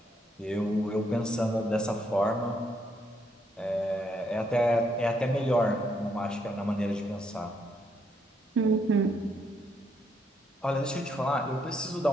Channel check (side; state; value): both; normal; correlation 0.74